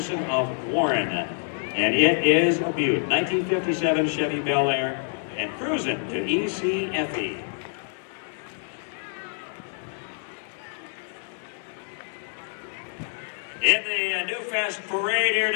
of Warren. And it is a beaut. 1957 Chevy Bel Air and cruising to ECFE. In the Newfest Parade here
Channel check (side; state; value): right; silent; 61 dB below the other